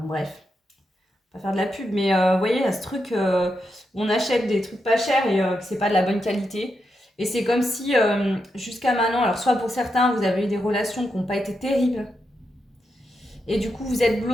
bref, pas faire de la pub, mais vous voyez, il y a ce truc où on achète des trucs pas chers et que c'est pas de la bonne qualité. Et c'est comme si jusqu'à maintenant, alors soit pour certains, vous avez eu des relations qui n'ont pas été terribles. Et du coup, vous êtes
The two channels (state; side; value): normal; both; correlation 0.85